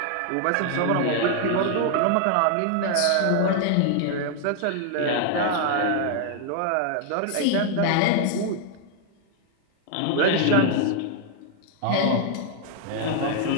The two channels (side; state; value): both; different; correlation 0.00